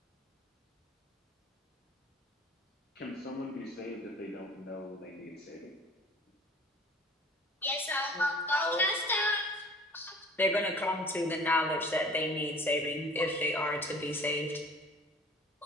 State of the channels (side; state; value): both; normal; correlation 0.48